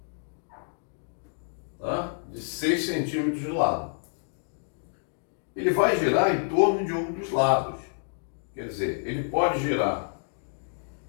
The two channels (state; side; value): silent; right; digital silence